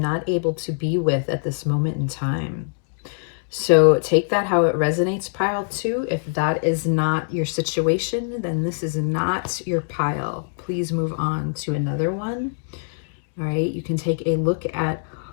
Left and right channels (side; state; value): right; silent; digital silence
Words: able to be with at this moment in time. So take that how it resonates, pile 2. If that is not your situation, then this is not your pile. Please move on to another one. All right, you can take a look at